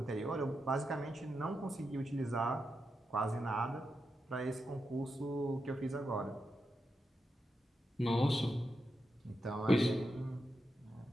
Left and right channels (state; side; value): normal; both; correlation 0.87